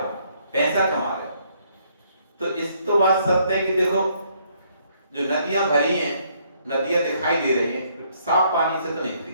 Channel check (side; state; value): both; inverted; correlation -0.68